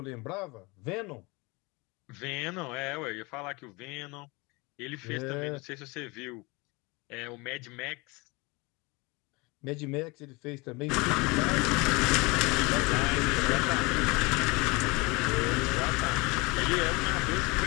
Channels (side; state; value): right; quieter; 25.9 dB